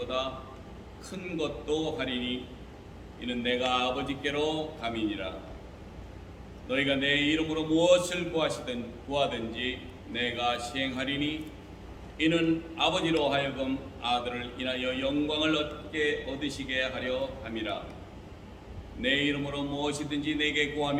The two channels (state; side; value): identical; both; correlation 1.00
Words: 큰 것도 하리니 이는 내가 아버지께로 감이니라. 너희가 내 이름으로 무엇을 구하든지 내가 시행하리니 이는 아버지로 하여금 아들을 인하여 영광을 얻으시게 하려 함이라. 내 이름으로 무엇이든지 내게